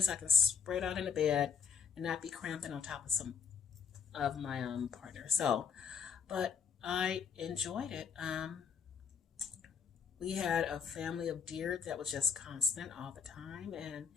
I can spread out in the bed and not be cramping on top of some of my partner. So, but I enjoyed it. We had a family of deer that was just constant all the time, and it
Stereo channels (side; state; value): right; quieter; 6.4 dB